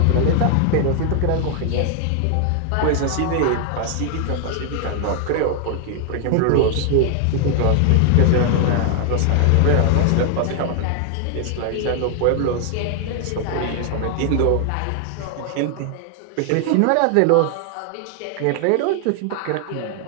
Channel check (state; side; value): different; both; correlation 0.00